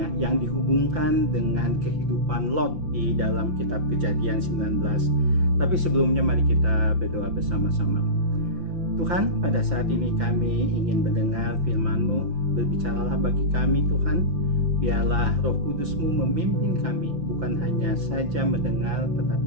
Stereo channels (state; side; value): late; left; 5.9 ms